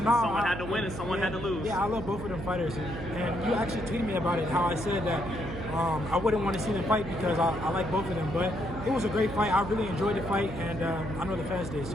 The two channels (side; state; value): right; noise; hum, 8 dB below the sound